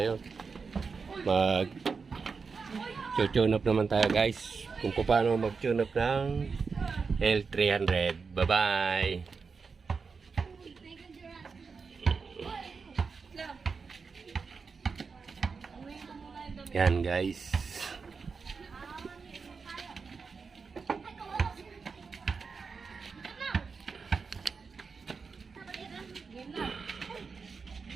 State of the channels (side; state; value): left; quieter; 5.0 dB